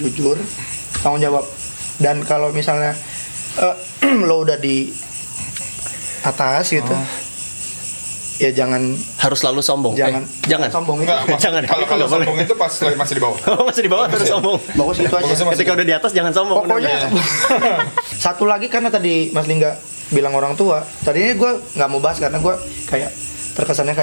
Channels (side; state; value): both; inverted; correlation -1.00